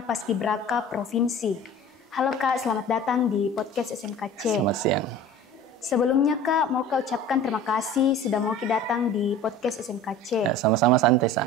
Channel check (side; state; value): both; normal; correlation 0.41